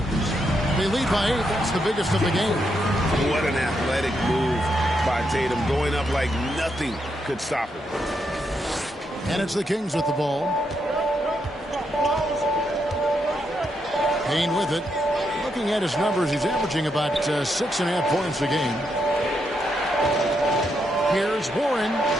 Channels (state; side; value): normal; both; correlation 0.80